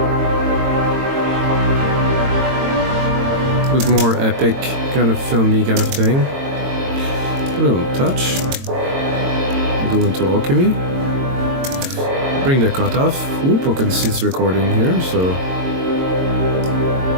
Bit more epic, kind of filmy kind of thing. Put it on touch. Go into alchemy. Bring the cut off. Whoop, I can see it's recording here, so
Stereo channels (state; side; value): late; left; 22 ms